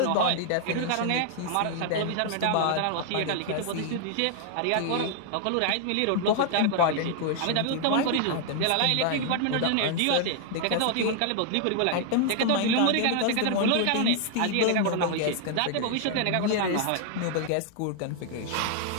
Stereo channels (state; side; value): different; both; correlation 0.00